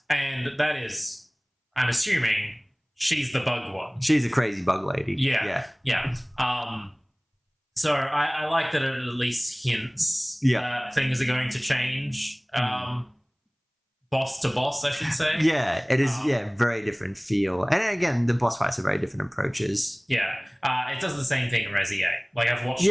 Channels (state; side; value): identical; both; correlation 1.00